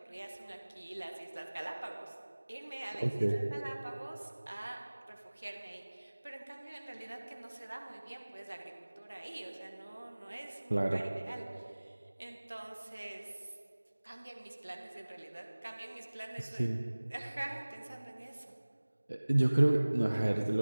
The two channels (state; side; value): inverted; both; correlation -1.00